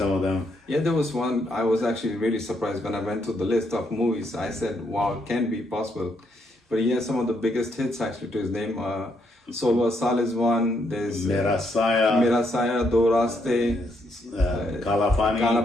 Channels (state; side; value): normal; both; correlation 0.75